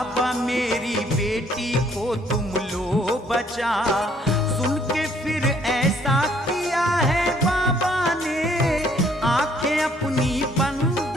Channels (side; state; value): both; normal; correlation 0.64